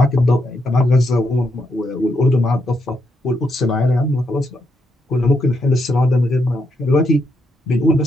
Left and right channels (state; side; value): normal; both; correlation 0.80